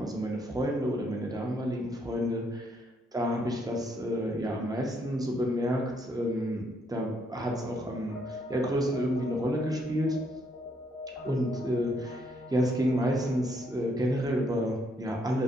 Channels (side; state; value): both; normal; correlation 0.72